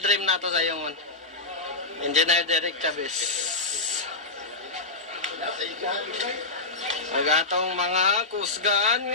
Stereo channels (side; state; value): right; quieter; 3.4 dB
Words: na to sa yung Engineer Derek Chavez. Magatong mga kusgan